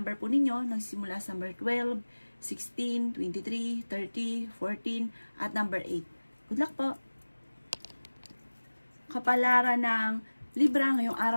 po ninyo nagsimula sa number 12, 16, 23, 30, 14 at number 8. Good luck po! Kapalaran ng Libra ngayong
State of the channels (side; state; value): both; inverted; correlation -1.00